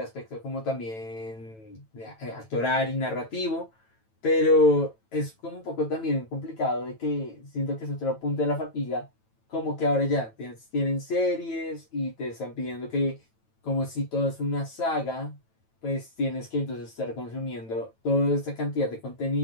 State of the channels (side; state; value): right; late; 9.1 ms